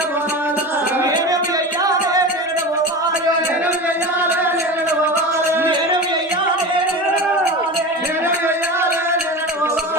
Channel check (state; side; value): normal; both; correlation 0.28